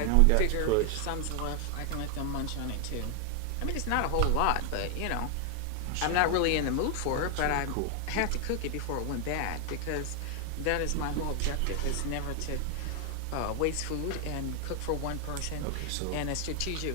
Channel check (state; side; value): different; both; correlation 0.00